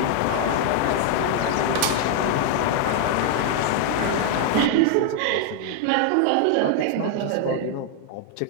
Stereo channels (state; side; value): different; both; correlation 0.00